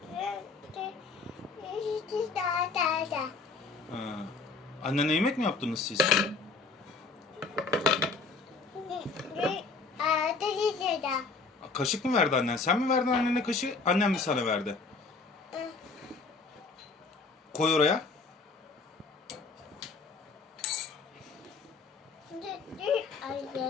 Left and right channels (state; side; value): quieter; right; 4.2 dB